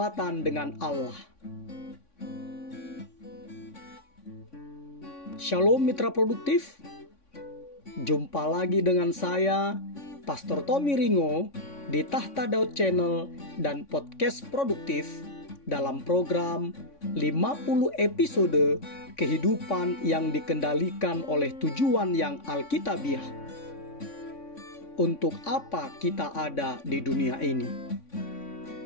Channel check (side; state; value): right; late; 3.5 ms